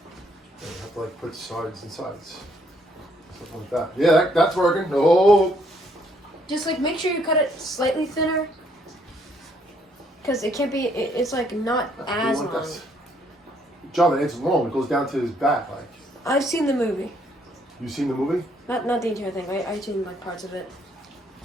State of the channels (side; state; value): both; normal; correlation 0.68